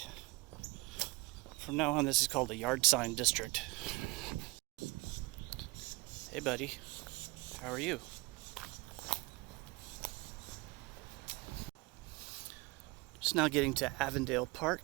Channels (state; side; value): quieter; left; 23.8 dB